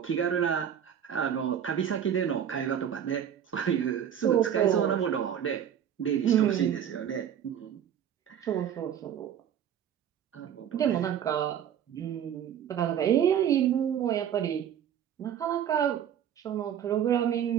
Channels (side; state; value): left; quieter; 9.3 dB